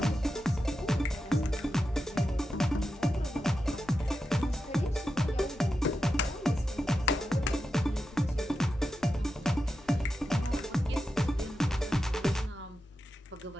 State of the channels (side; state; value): both; normal; correlation 0.89